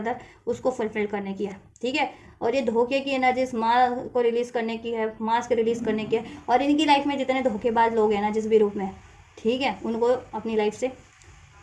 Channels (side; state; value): both; identical; correlation 1.00